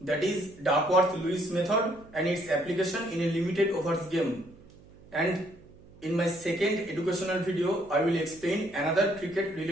that is Duckworth-Lewis method and its application in a limited overs game. And in my second educational video, I will explain another cricket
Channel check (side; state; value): right; noise; hum, 23 dB below the sound